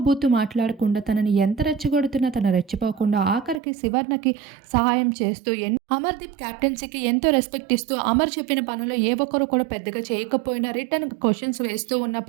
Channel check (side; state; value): left; drops out; at 3.6 s